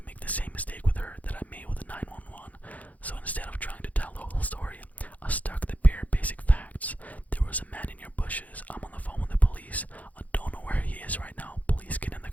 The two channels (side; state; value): right; late; 0.074 ms